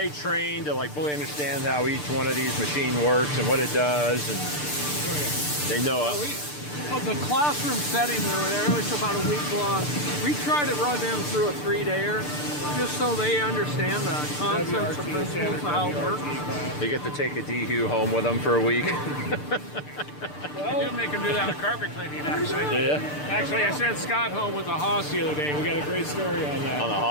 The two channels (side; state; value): right; late; 6.8 ms